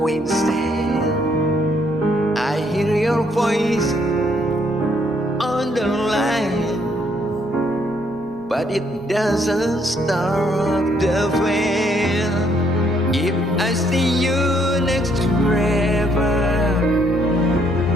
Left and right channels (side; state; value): both; normal; correlation 0.69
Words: instead. I hear your voice on the line, but it doesn't stop the flame. If I see you next forever,